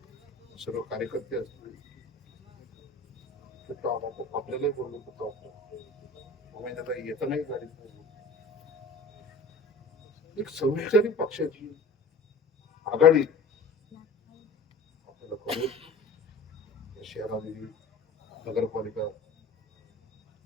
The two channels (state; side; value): quieter; right; 3.3 dB